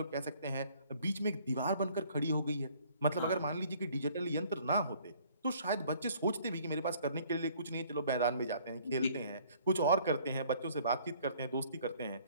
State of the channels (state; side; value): inverted; both; correlation -0.58